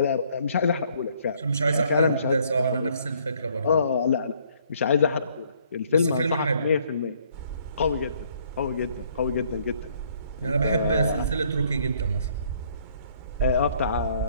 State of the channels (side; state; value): both; inverted; correlation -0.64